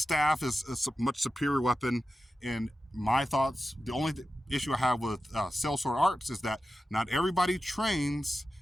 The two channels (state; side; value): normal; both; correlation 0.93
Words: is a much superior weapon. In my thoughts, the only issue I have with Sellsword arts is that not everybody trains